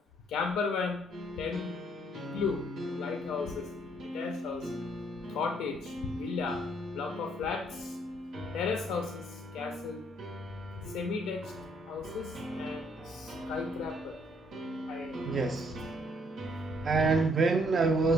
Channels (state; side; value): normal; both; correlation 0.67